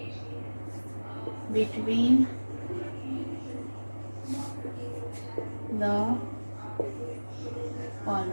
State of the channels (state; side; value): inverted; both; correlation -1.00